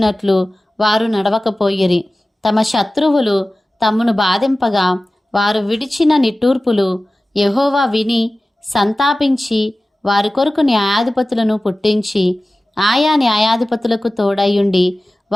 వారు నడవకపోయిరి. తమ శత్రువులు తమను బాధింపగా వారు విడిచిన నిట్టూర్పులు యెహోవా విని సంతాపించి వారి కొరకు న్యాయాధిపతులను పుట్టించి ఆయా న్యాయాధిపతులకు తోడయుండి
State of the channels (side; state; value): both; normal; correlation 0.96